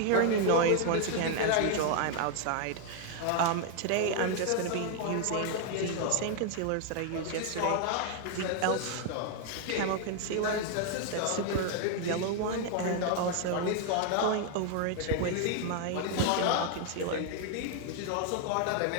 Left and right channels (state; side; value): different; both; correlation 0.00